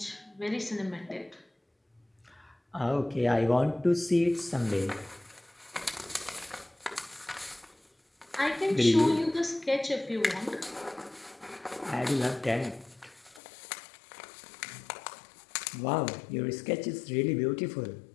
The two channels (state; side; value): drops out; right; at 13.4 s